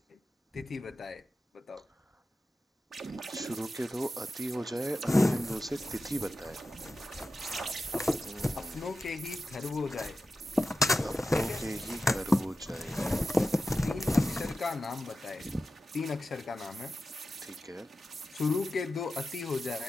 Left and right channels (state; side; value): normal; both; correlation 0.93